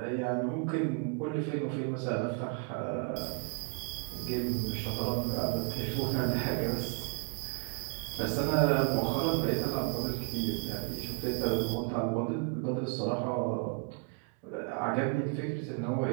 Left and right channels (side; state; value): left; quieter; 35.3 dB